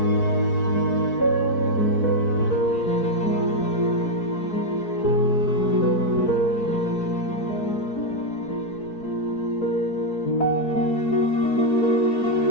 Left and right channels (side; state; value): right; late; 4.6 ms